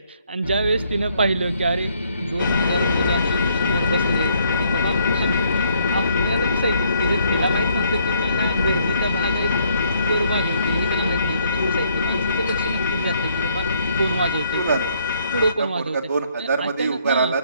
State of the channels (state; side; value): inverted; both; correlation -0.68